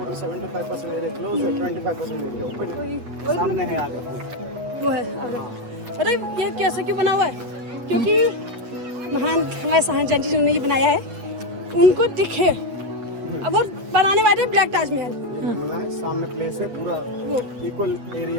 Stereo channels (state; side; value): late; left; 8.3 ms